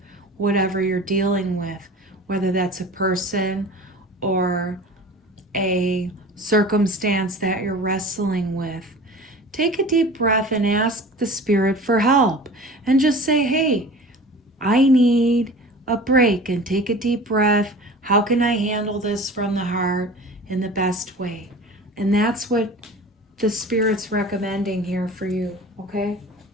whatever you're dealing with, whether that's a person or a circumstance that you're wrestling with. Take a deep breath and ask the spirit for help, and just say, hey, I need a break, and take a deep breath. How can I handle this from the heart in the best way? And that's what the spirit's recommending here for you, okay?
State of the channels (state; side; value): normal; both; correlation 0.39